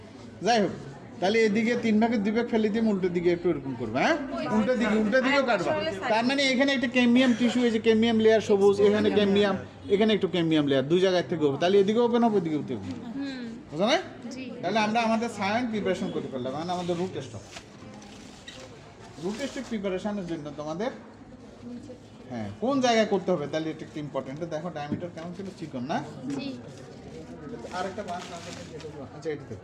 যাই হোক, তাহলে এদিকে 3 ভাগের 2 ভাগ ফেলে দিয়ে উল্টো দিকে একটু এরকম করবে, হ্যাঁ উল্টো দিকেও কাটবা। তার মানে এখানে একটা ক্যামিয়াম টিস্যু, এই যে ক্যামিয়াম লেয়ার সবুজ, এখানে ক্যামিয়াম, এখানে একটু ক্যামিয়াম লেয়ার, 2 জায়গায় থেকে হবে, তাহলে এদিকে ওপেন হবে, এদিকে ওপেন হবে, বুঝো না? তাহলে আমরা আমাদের সায়েন্স প্রিপারেশন করতে পারলাম, মানে আমাদের রুট টেস্ট প্রিপারেশনের জন্য তোমাদের হ্যাঁ কোন জায়গায় করতে হবে, তাহলে এটা একটু ইম্পর্টেন্ট। দেখো ডায়ামিটার কেমন ছিল, চিকন না? আরেকটা বাঁশ আছে, আচ্ছা এটা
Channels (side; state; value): both; identical; correlation 1.00